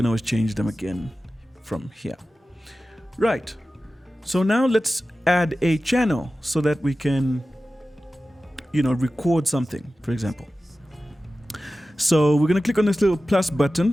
always change them again from here. Right. So now let's add a channel so that we can record something, for example. So we're going to click on this little plus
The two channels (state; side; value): normal; both; correlation 0.94